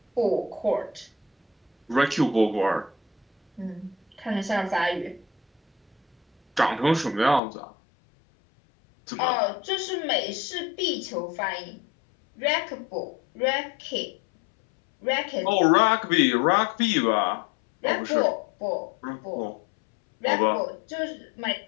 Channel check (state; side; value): drops out; right; at 7.4 s